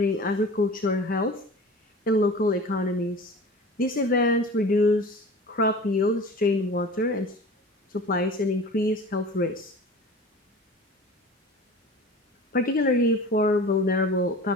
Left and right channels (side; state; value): both; normal; correlation 0.39